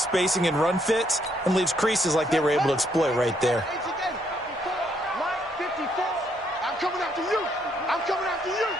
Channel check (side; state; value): both; normal; correlation 0.72